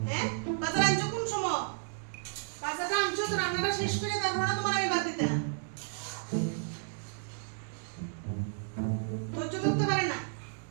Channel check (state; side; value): silent; left; digital silence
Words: হ্যাঁ, বাজার আনছো কোন সময়? বাজারটা আনছো তো রান্নাটা শেষ করে তারপর না তোমার আমি বাদ দিতাম। ধৈর্য ধরতে পারে না।